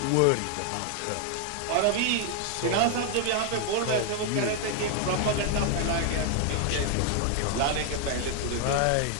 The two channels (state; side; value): different; both; correlation 0.00